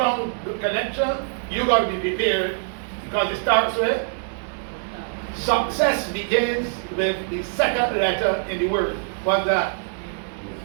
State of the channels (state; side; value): silent; left; digital silence